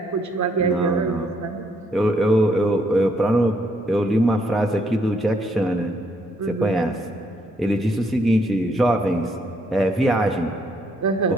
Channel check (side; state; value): both; normal; correlation 0.72